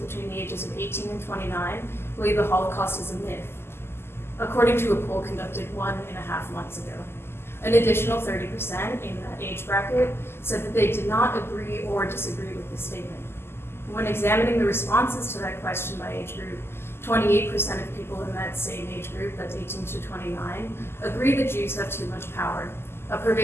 the ages of 18 and 29 believe the Holocaust is a myth, according to a poll conducted 1.5 months ago. An additional 30% in that age bracket said that they did not agree or disagree with this statement. When examining the responses to that question by age group, 28% of people in that same age group, that's 18 to 29, agree that Jews have too much power, a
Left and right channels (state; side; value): late; right; 0.12 ms